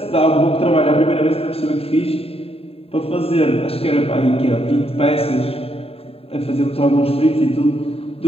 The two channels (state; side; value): late; right; 0.28 ms